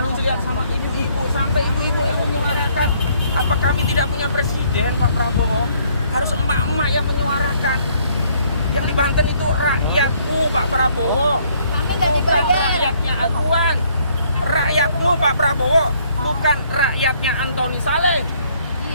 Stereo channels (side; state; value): both; inverted; correlation -0.65